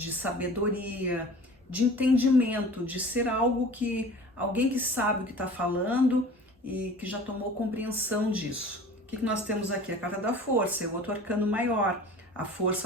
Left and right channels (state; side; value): normal; both; correlation 0.42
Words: sabedoria, de entendimento, de ser alguém que sabe o que está falando e que já tomou compreensão disso. O que nós temos aqui? A carta da força, é o outro arcano maior. A